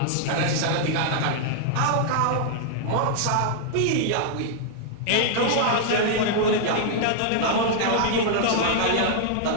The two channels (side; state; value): both; different; correlation -0.01